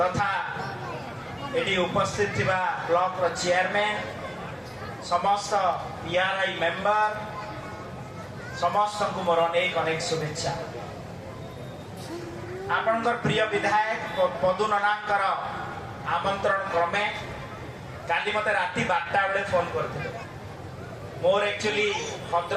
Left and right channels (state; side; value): identical; both; correlation 1.00